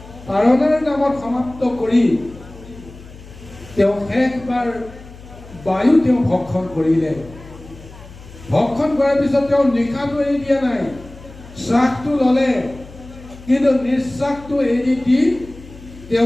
পাৰণাৰ নামত সমাপ্ত কৰি তেওঁ শেষবাৰ বায়ু তেওঁ ভক্ষণ কৰিলে। ভক্ষণ কৰাৰ পিছত তেওঁ নিশাটো এৰি দিয়া নাই, শ্বাসটো ল'লে, কিন্তু নিশ্বাসটো এৰি দি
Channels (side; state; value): left; noise; hum, 18 dB below the sound